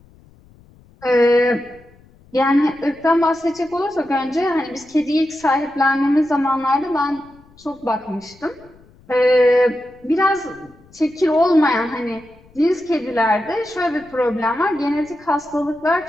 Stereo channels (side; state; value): left; noise; rumble, 27 dB below the sound